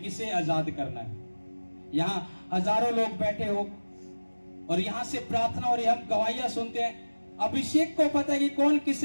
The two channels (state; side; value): inverted; both; correlation -1.00